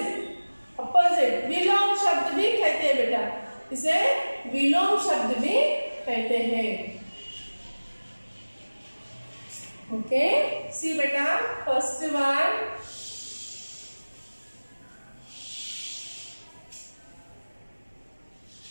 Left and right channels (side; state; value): both; inverted; correlation -1.00